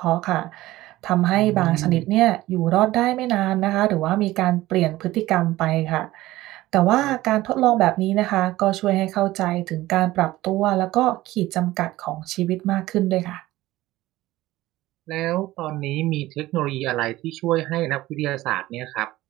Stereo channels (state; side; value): quieter; left; 16.9 dB